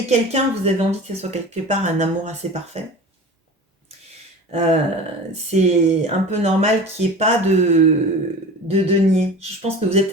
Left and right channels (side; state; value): both; normal; correlation 0.36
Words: quelqu'un, vous avez envie que ce soit quelque part un amour assez parfait. C'est un peu normal qu'il n'y ait pas de denier. Je pense que vous